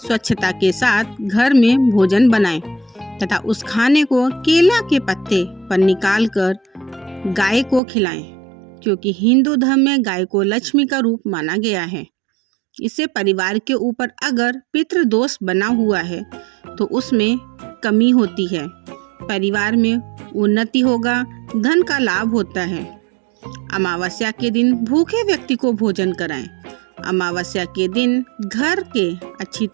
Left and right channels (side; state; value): left; drops out; at 7.8 s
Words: के साथ घर में भोजन बनाएं तथा उस खाने को केला के पत्ते पर निकालकर गाय को खिलाएं, क्योंकि हिंदू धर्म में गाय को लक्ष्मी का रूप माना गया है। इससे परिवार के ऊपर अगर पितृ दोष बना हुआ है तो उसमें कमी होती है, परिवार में उन्नति होगा, धन का लाभ होता है। अमावस्या के दिन भूखे व्यक्ति को भोजन कराएं। अमावस्या के दिन घर के अच्छी